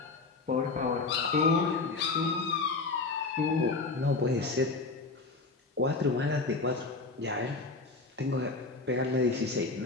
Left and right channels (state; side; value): quieter; right; 3.8 dB